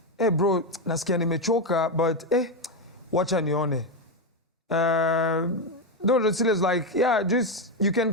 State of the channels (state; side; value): normal; both; correlation 0.08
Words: hey bro, nasikia nimechoka, but wacha nione. No, Sila's like, yeah, just you can